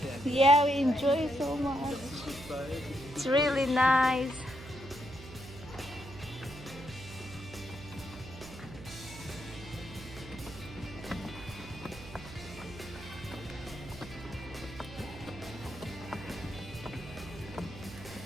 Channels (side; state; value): right; noise; hum, 14 dB below the sound